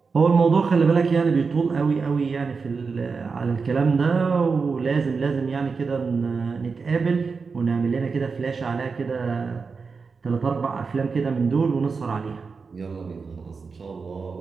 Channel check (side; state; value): left; quieter; 4.9 dB